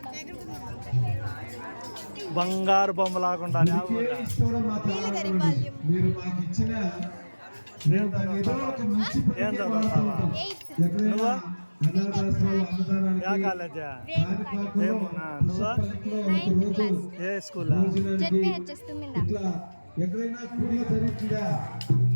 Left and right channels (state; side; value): inverted; both; correlation -1.00